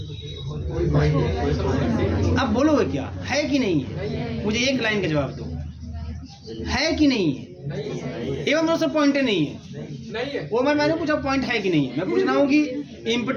अब बोलोगे क्या, है कि नहीं है? मुझे एक लाइन का जवाब दो, है कि नहीं है? एवं दोस्तों पॉइंट नहीं है, वो मैंने पूछा पॉइंट है कि नहीं है। मैं पूछ रहा हूँ कि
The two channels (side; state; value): both; identical; correlation 1.00